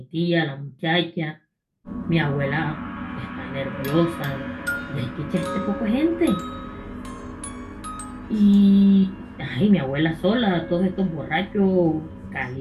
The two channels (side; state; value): both; identical; correlation 1.00